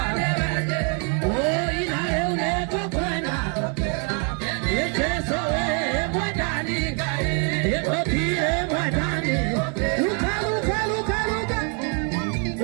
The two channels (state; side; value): quieter; left; 38.6 dB